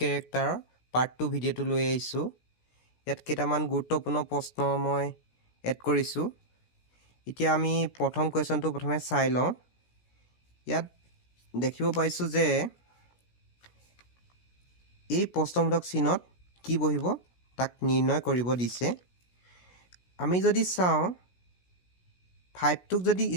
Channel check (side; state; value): right; late; 17 ms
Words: পাৰ্ট 2 ভিডিঅ'টো লৈ আহিছোঁ। ইয়াত কেইটামান গুৰুত্বপূৰ্ণ প্ৰশ্ন মই এড কৰিছোঁ। এতিয়া আমি প্ৰথম কুৱেশ্যনটো প্ৰথমে চাই লওঁ। ইয়াত দেখিব পাইছোঁ যে এই প্ৰশ্নবোধক চিহ্নত কি বহিব তাক নিৰ্ণয় কৰিব দিছে। আমি যদি চাওঁ 5টোক যদি